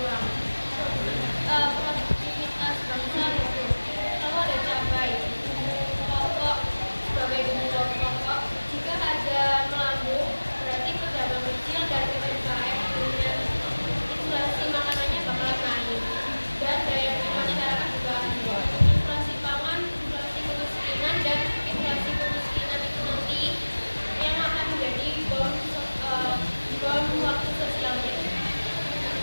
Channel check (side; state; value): both; inverted; correlation -1.00